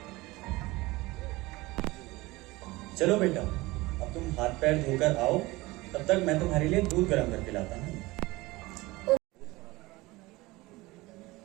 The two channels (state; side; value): quieter; left; 21.0 dB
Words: चलो बेटा, अब तुम हाथ पैर धोकर आओ, तब तक मैं तुम्हारे लिए दूध गर्म करके लाता हूँ।